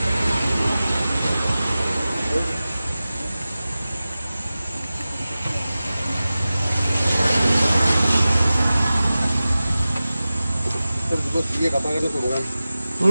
terus dia kapan itu bukan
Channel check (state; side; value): inverted; both; correlation -0.96